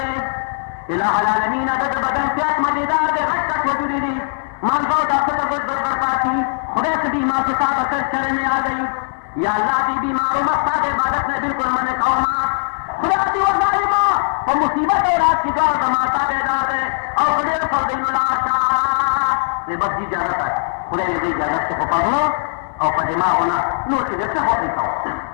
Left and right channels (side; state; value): right; silent; digital silence